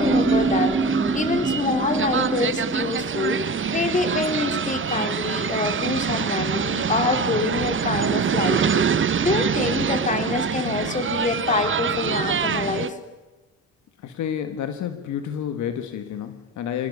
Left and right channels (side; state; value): both; normal; correlation 0.28